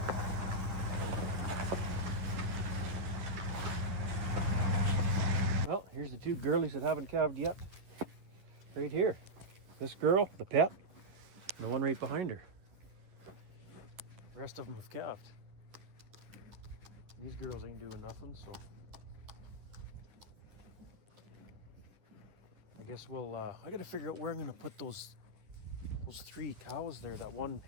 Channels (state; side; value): late; left; 10 ms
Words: Well, here's the two girlies that haven't calved yet. Right here. This girl, the pet, The one right behind her. The rest of them have calved. These girls ain't doing nothing, so I guess we'll, I gotta figure out where I'm gonna put those 3 cows there, that one